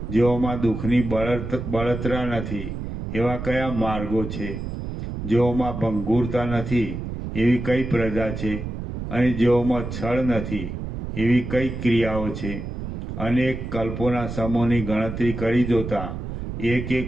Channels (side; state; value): right; noise; rumble, 6 dB below the sound